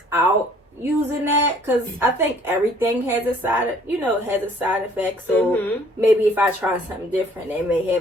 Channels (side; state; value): both; normal; correlation 0.58